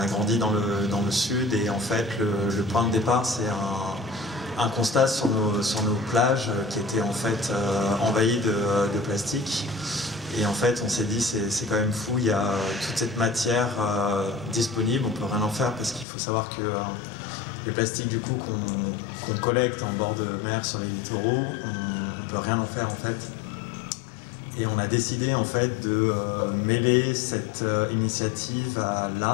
grandi dans le sud, et en fait le point de départ c'est un constat sur nos plages qui étaient en fait envahies de plastique. Et en fait on s'est dit c'est quand même fou, il y a toute cette matière disponible, on peut rien en faire parce qu'il faut savoir que les plastiques du coup qu'on collecte en bord de mer sur les littoraux, on peut rien en faire en fait. Et on a décidé en fait de mêler cette initiative à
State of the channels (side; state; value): right; drops out; at 16.1 s